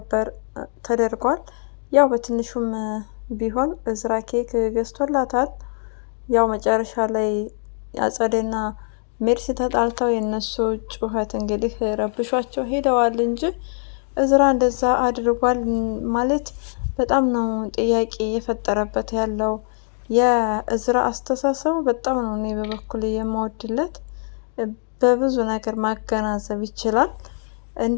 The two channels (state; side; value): silent; right; 64 dB below the other